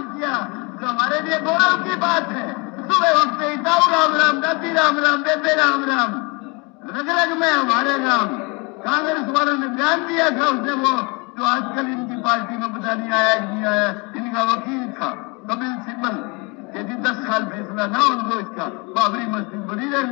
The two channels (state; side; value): quieter; right; 29.3 dB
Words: किया, जो हमारे लिए गौरव की बात है। सुबह उठते ही ताऊ राम राम, दादी राम राम, बेबे राम राम, रग रग में हमारे राम। कांग्रेस वालों ने बयान दिया था, उसने वो जो आजकल इनकी पार्टी में पता नहीं आया नहीं आया, इनका वकील था कपिल सिब्बल, यदि 10 साल फैसला ना उनको इसका, बाबरी मस्जिद बड़ी